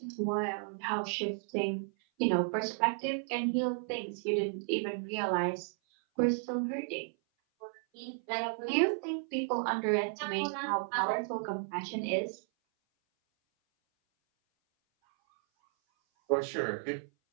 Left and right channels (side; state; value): left; silent; 55 dB below the other